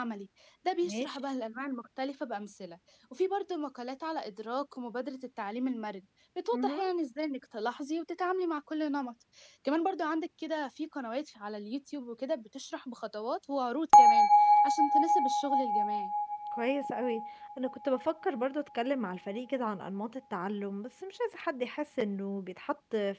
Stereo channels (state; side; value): identical; both; correlation 1.00